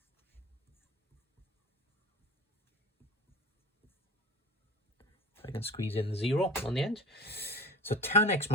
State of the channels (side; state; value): both; normal; correlation 0.36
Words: I can squeeze in the 0 on the end. So tan x